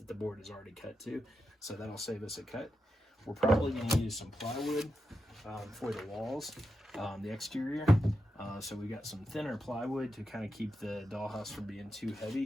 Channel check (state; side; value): normal; both; correlation 0.88